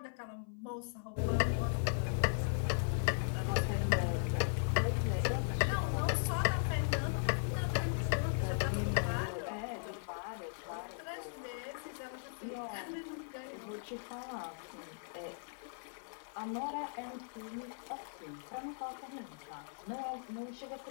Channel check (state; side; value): silent; right; 52 dB below the other